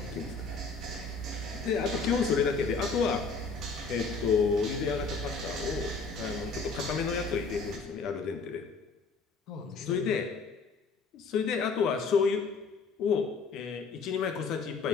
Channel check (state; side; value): quieter; right; 4.5 dB